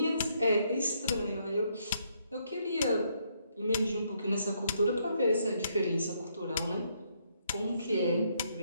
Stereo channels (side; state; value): both; inverted; correlation -0.73